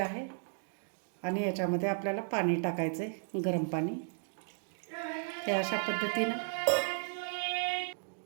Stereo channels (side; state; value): left; silent; digital silence